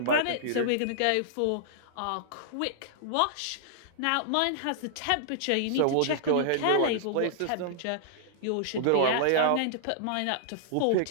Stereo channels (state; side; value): different; both; correlation -0.01